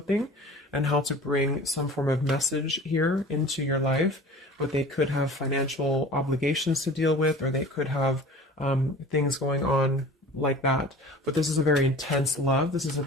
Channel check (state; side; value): normal; both; correlation 0.41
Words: and how to bring some form of message here into your life. But they could have financial obligations to deal with, or they could have things going on like that. But this is a very intense love. This is a